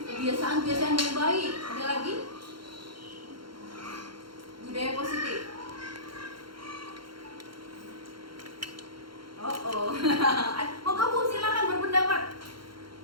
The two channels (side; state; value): left; late; 0.73 ms